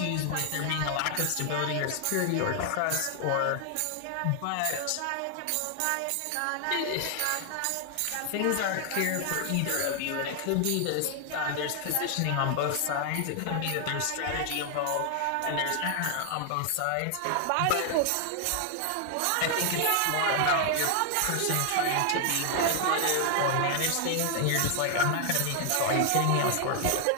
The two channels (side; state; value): both; different; correlation 0.00